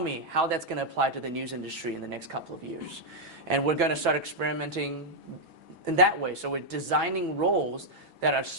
how that's going to apply to the news industry in the next couple of years. And we're going to start experimenting in that way. So we're designing roles that are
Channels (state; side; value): late; left; 6.1 ms